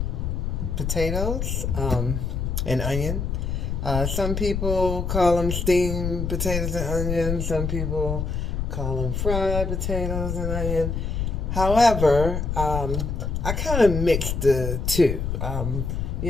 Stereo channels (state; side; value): noise; left; rumble, 2 dB below the sound